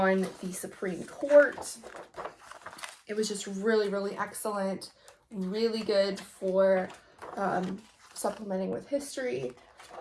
the Supreme Court. It was just really, really excellent, really good for supplementing with history.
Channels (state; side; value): identical; both; correlation 1.00